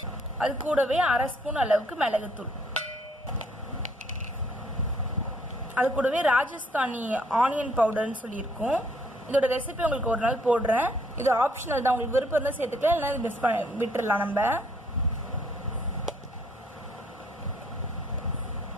அது கூடவே 1/2 ஸ்பூன் அளவுக்கு மிளகுத்தூள், அது கூடவே ராஜஸ்தானி ஆனியன் பவுடர்னு சொல்லியிருக்கோம். இதோட ரெசிபி உங்களுக்கு ஒரு நாள் போடுறேன். இது ஆப்ஷனல் தான், உங்களுக்கு விருப்பம் தான் சேர்த்துக்கலாம், இல்லைன்னா மிஸ் விட்டுடலாம். நம்ம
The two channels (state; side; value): normal; both; correlation 0.66